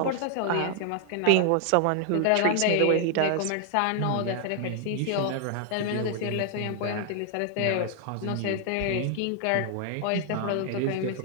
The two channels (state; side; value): different; both; correlation 0.00